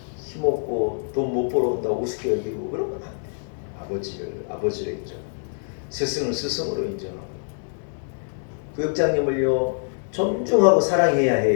힘없고 돈 못 벌어온다고 우습게 여기고 그러면 안 돼요. 아버지를 인정, 스승을 스승으로 인정하고 구역장님을요 존중하고 사랑해야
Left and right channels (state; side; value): silent; right; digital silence